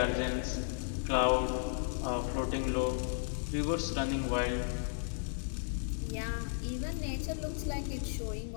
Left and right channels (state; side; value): silent; right; digital silence